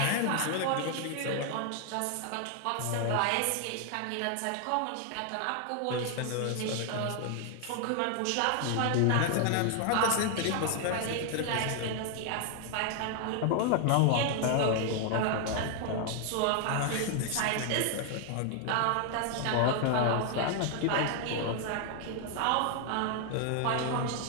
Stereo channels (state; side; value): different; both; correlation 0.00